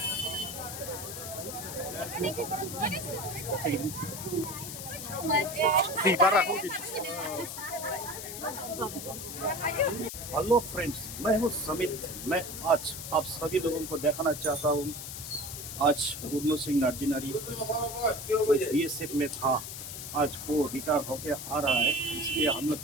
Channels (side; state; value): left; noise; hiss, 8 dB below the sound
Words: हेलो फ्रेंड्स, मैं हूँ समित। मैं आज आप सभी लोगों को दिखाना चाहता हूँ। आज पूर्ण सिंह नार्जिनारी बीएसएफ में था, आज वो रिटायर होके आ रहा है, इसलिए हम लोग